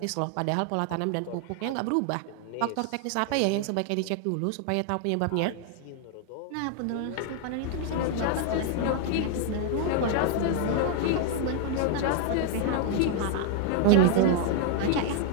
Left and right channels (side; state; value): both; different; correlation 0.00